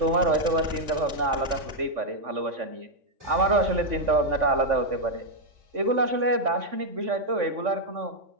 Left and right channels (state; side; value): late; left; 3.5 ms